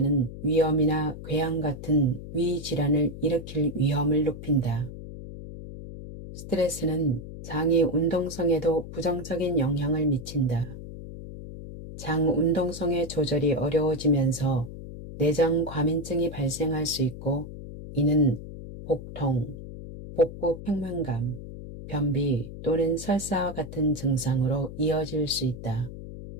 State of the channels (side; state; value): left; noise; hum, 11 dB below the sound